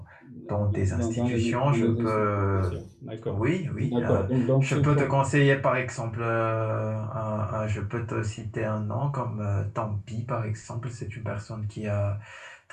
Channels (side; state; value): both; identical; correlation 1.00